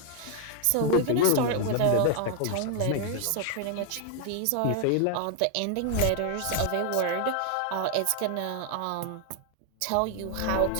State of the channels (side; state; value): both; different; correlation 0.00